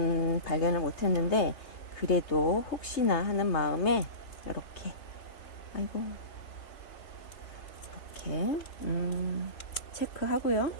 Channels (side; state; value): right; late; 3.3 ms